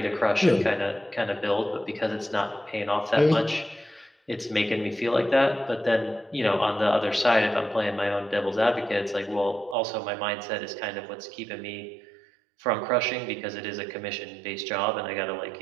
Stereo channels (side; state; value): left; drops out; at 9.8 s